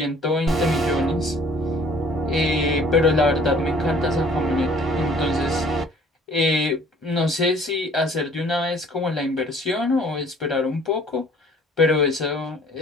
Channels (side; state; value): both; normal; correlation 0.54